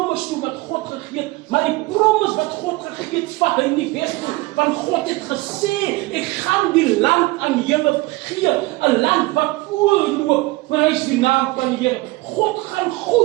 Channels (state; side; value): quieter; left; 21.3 dB